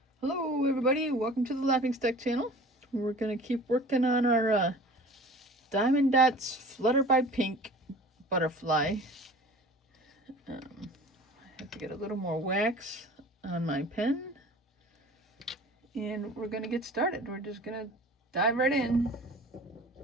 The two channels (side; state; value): both; normal; correlation 0.43